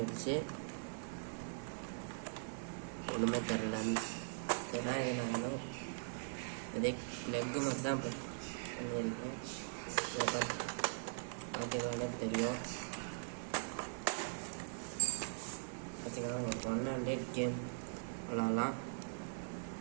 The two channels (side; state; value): left; silent; 50 dB below the other